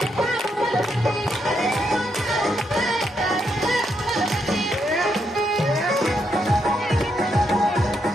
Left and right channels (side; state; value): both; normal; correlation 0.79